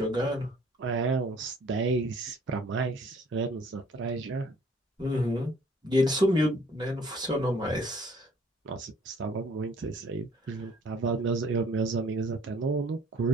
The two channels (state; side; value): normal; both; correlation 0.57